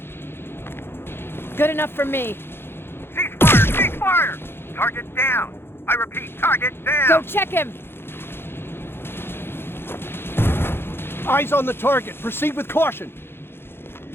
Good enough for me. Ceasefire! Ceasefire! Target down! I repeat, target down! Go check him! Eyes on the target. Proceed with caution.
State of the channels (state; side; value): late; right; 0.11 ms